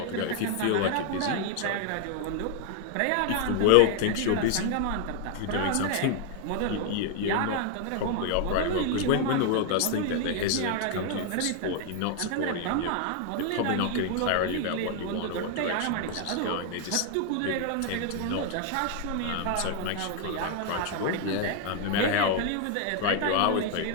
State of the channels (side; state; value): both; different; correlation 0.00